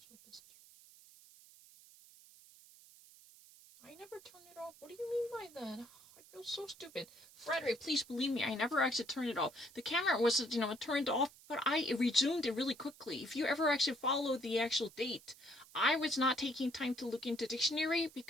district. I never turned it off. What do you mean by that? I feel so stupid. Frederick, please believe me, I never actually turned it off. The camera was, turned off, but I resumed it really quickly. If you ever actually follow the actual date, I was not taking time to look into dictionary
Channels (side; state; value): right; noise; hiss, 22 dB below the sound